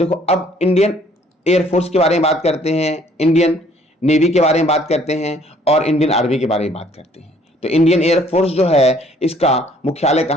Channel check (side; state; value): both; normal; correlation 0.60